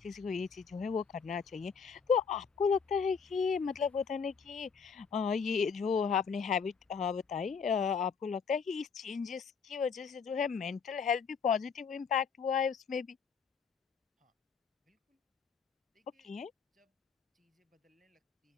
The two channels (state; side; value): quieter; right; 6.0 dB